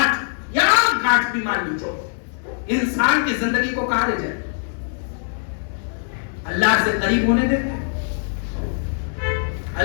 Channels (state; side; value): silent; right; 64 dB below the other